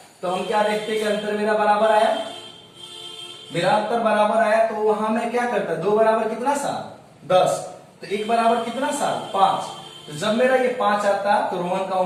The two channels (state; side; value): identical; both; correlation 1.00